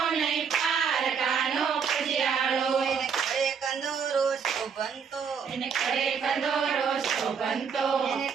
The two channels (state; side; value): quieter; left; 6.5 dB